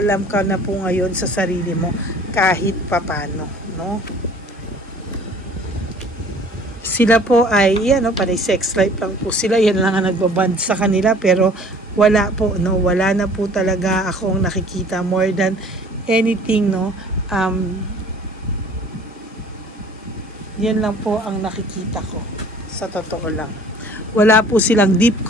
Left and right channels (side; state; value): both; normal; correlation 0.50